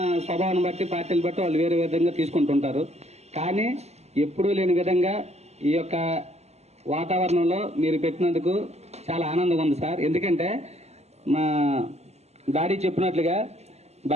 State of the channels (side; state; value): left; late; 0.31 ms